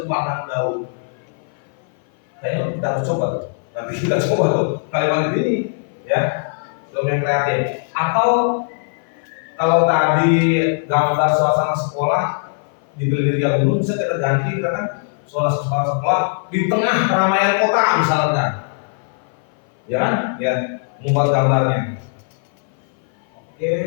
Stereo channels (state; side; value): silent; right; 56 dB below the other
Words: pandang daun. Kayaknya kita harus coba tuh. Nanti kita coba tuh kalimat ini, ya. Prompt yang kreatif. Atau kalau tadi gambar suasana sekolah dibeli di gunung, bisa kita ganti kan suasana sekolah di tengah keramaian kota misalkan, ya kan? Ya, membuat gambarnya. Oke.